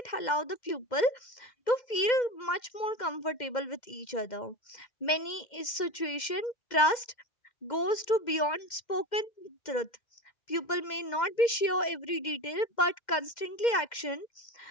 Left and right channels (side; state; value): right; late; 2.1 ms